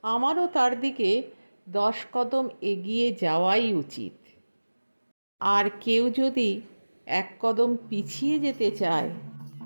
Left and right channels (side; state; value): both; inverted; correlation -1.00